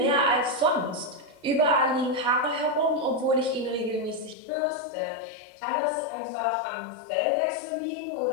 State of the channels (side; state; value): right; drops out; at 4.4 s